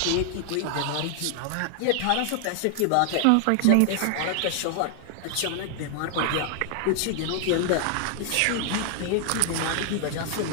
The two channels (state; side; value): different; both; correlation 0.00